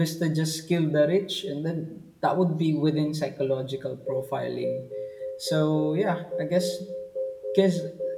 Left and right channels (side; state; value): both; identical; correlation 1.00